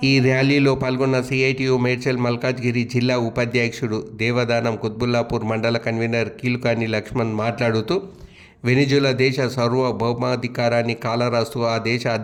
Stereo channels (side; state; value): both; identical; correlation 1.00